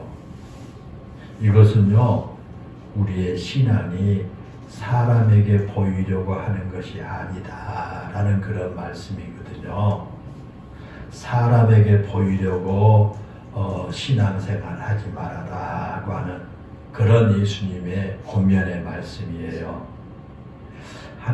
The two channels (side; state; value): both; identical; correlation 1.00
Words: 이것은요, 우리의 신앙이 사람에게 보이려고 하는 것이 아니다 라는 그런 말씀이거든요. 사람에게 보이려고 신앙생활 하지 말아라고 하는 그런 예수님의 권면의 말씀이에요.